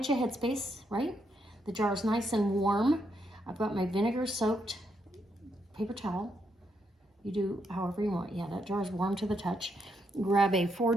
of headspace, right? The jar is nice and warm. I've got my vinegar soaked paper towel. You do however you want. Yeah, that jar is warm to the touch. Grab a 4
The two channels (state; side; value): normal; both; correlation 0.78